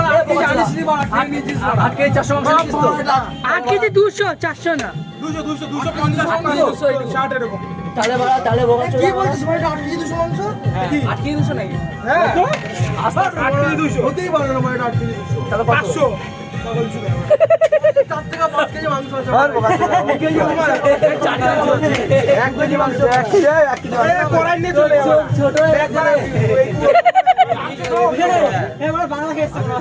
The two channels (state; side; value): identical; both; correlation 1.00